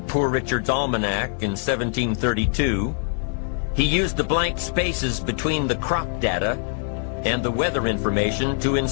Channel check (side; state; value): right; silent; digital silence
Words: Poor Richard's Almanac in 1732, he used the blank spaces between the crop data and the weather information to